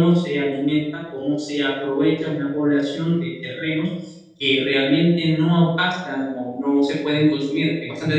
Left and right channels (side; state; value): both; identical; correlation 1.00